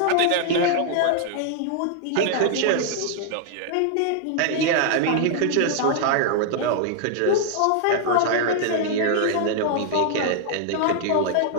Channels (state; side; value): different; both; correlation 0.00